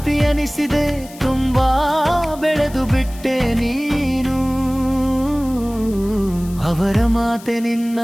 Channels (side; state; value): left; noise; hiss, 20 dB below the sound